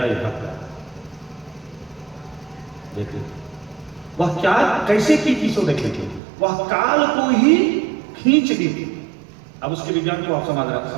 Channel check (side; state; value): left; drops out; at 6.2 s